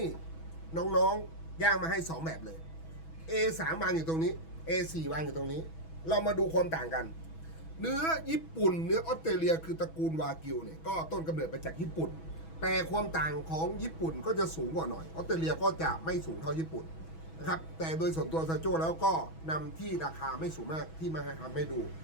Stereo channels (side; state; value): right; late; 6.1 ms